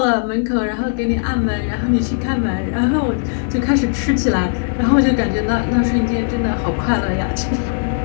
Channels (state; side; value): silent; right; digital silence